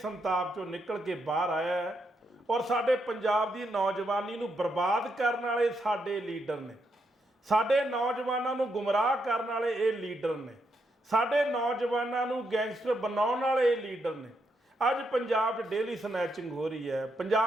ਚੋਂ ਨਿਕਲ ਕੇ ਬਾਹਰ ਆਇਆ ਹੈ, ਔਰ ਸਾਡੇ ਪੰਜਾਬ ਦੀ ਨੌਜਵਾਨੀ ਨੂੰ ਬਰਬਾਦ ਕਰਨ ਵਾਲੇ ਸਾਡੇ ਲੀਡਰ ਨੇ। ਸਾਡੇ ਨੌਜਵਾਨਾਂ ਨੂੰ ਗੁੰਮਰਾਹ ਕਰਨ ਵਾਲੇ ਇਹ ਲੀਡਰ ਨੇ। ਸਾਡੇ ਨੌਜਵਾਨਾਂ ਨੂੰ ਗੈਂਗਸਟਰ ਬਣਾਉਣ ਵਾਲੇ ਇਹ ਲੀਡਰ ਨੇ। ਅੱਜ ਪੰਜਾਬ 'ਚ ਡੇਲੀ ਸਨੈਚਿੰਗ ਹੋ ਰਹੀ ਹੈ,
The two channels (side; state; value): both; normal; correlation 0.80